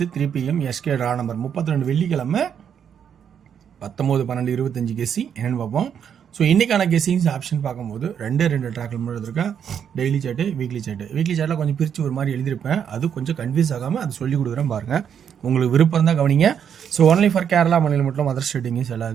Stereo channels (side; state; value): left; quieter; 8.2 dB